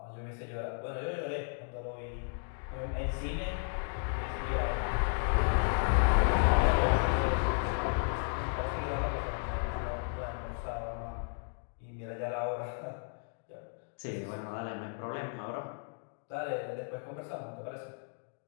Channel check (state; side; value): silent; right; 55 dB below the other